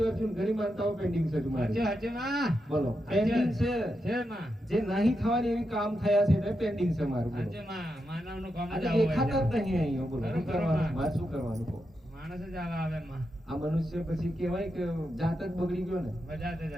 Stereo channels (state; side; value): normal; both; correlation 0.86